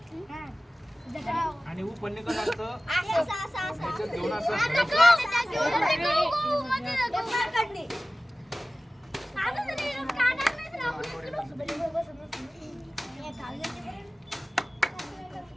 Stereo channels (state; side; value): normal; both; correlation 0.97